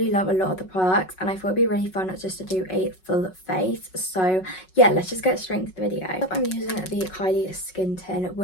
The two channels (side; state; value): right; late; 5.4 ms